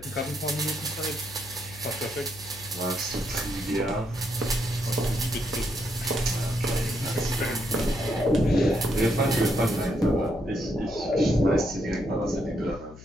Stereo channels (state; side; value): noise; left; hum, 17 dB below the sound